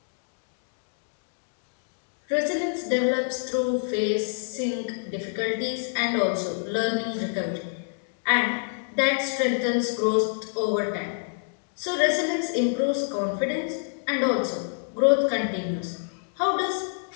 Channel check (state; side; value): silent; right; digital silence